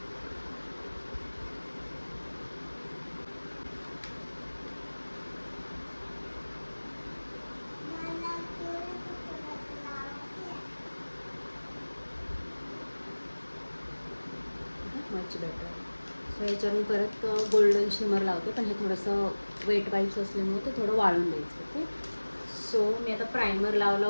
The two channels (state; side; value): inverted; both; correlation -1.00